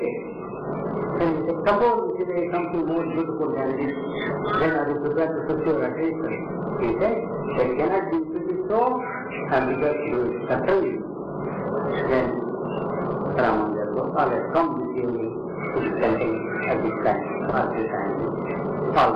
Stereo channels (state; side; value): identical; both; correlation 1.00